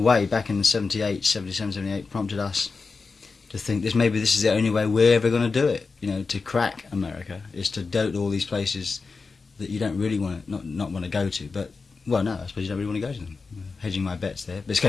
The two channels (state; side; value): quieter; right; 4.4 dB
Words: back in 77, 78, prompted us to think maybe this is the only way we're ever going to do it, you know, to crack America, is to dote all these places that you don't really want to, not want to go to, but, well, no, I suppose you don't really want to go to them. Hedging my bets there, but it's